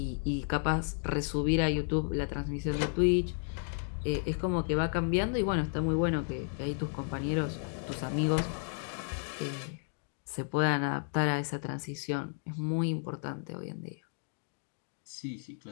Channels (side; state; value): right; silent; 55 dB below the other